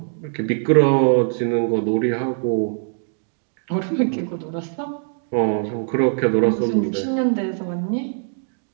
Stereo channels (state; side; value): silent; left; digital silence